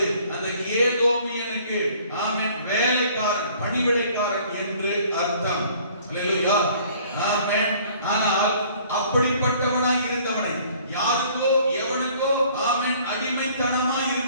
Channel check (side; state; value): both; inverted; correlation -0.55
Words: அந்த ஏதோமியனுக்கு, ஆமென், வேலைக்காரன், பணிவிடைக்காரன் என்று அர்த்தம். அல்லேலூயா, ஆமென். ஆனால் அப்படிப்பட்டவனாய் இருந்தவனை, யாருக்கோ எவனுக்கோ, ஆமென், அடிமைத்தனமாய்